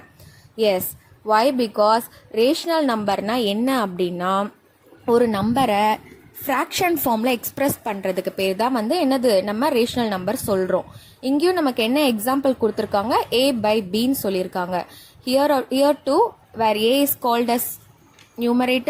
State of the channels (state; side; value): identical; both; correlation 1.00